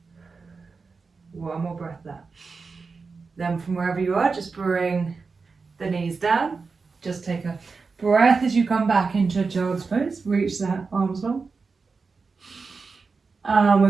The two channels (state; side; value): quieter; left; 4.6 dB